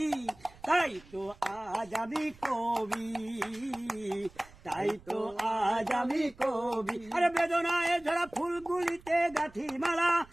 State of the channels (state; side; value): noise; right; rumble, 24 dB below the sound